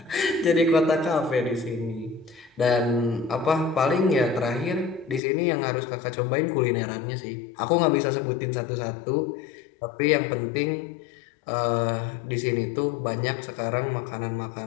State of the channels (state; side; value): drops out; right; at 5.2 s